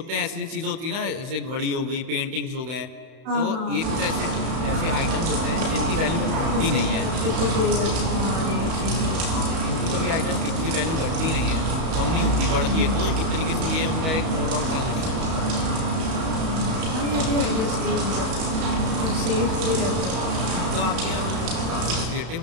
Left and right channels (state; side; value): late; left; 31 ms